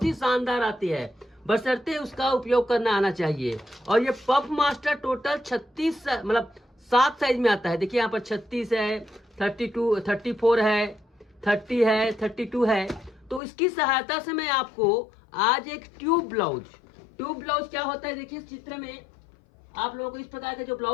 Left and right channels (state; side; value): drops out; right; at 13.4 s